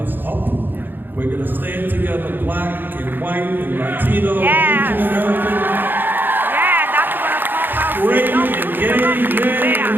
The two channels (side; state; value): left; late; 0.094 ms